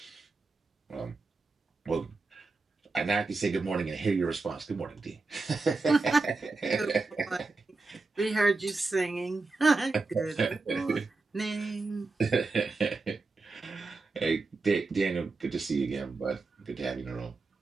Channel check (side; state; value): left; quieter; 3.7 dB